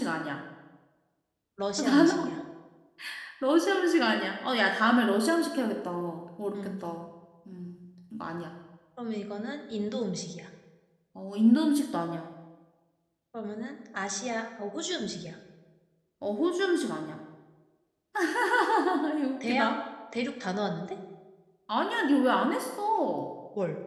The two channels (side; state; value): both; identical; correlation 1.00